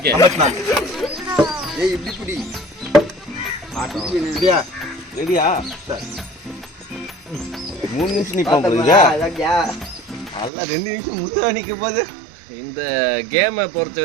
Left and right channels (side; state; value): left; drops out; at 10.5 s